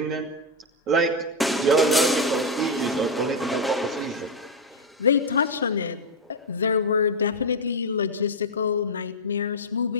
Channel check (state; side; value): normal; both; correlation 0.02